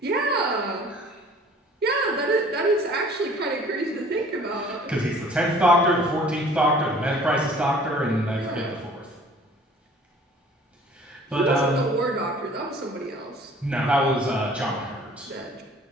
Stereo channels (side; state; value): both; normal; correlation 0.51